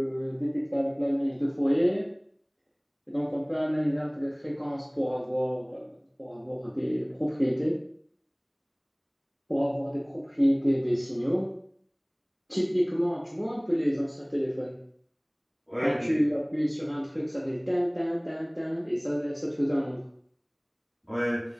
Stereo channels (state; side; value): identical; both; correlation 1.00